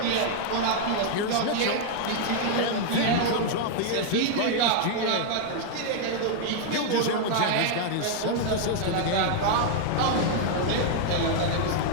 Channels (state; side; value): different; both; correlation 0.00